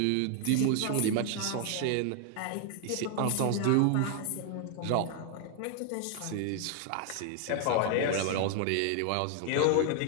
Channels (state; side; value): different; both; correlation 0.00